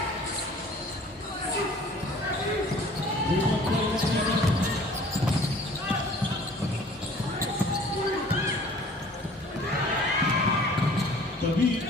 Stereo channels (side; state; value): both; normal; correlation 0.50